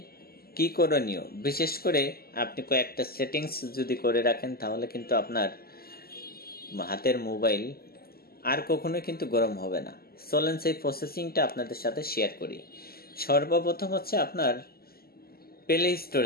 কি করণীয়? বিশেষ করে আপনি কয়েকটা সেটিংস যদি করে রাখেন, তাহলে কিন্তু আপনার হাতের মোবাইল আর কখনোই কিন্তু গরম হবে না। চলেন সেই প্রসেসিংটা আপনাদের সাথে শেয়ার করি। সর্বপ্রথম হচ্ছে আপনার প্লে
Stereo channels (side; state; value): right; late; 0.45 ms